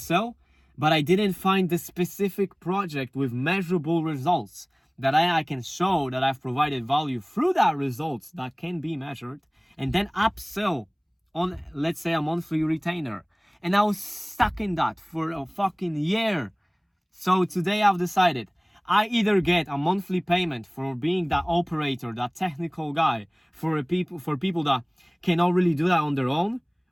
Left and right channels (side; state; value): both; identical; correlation 1.00